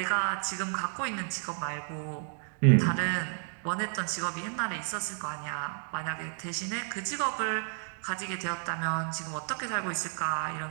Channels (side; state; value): left; silent; 57 dB below the other